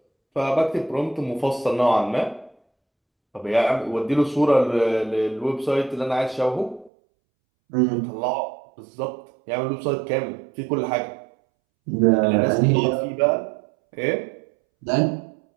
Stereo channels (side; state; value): left; drops out; at 6.9 s